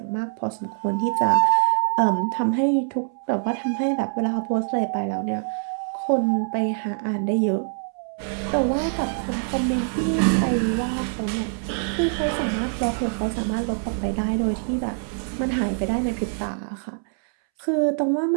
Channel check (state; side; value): silent; left; 62 dB below the other